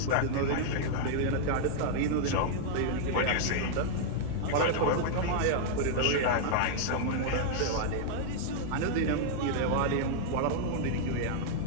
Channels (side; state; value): both; different; correlation -0.01